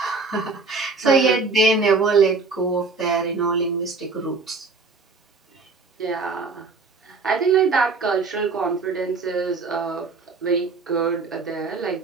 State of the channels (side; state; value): left; quieter; 4.1 dB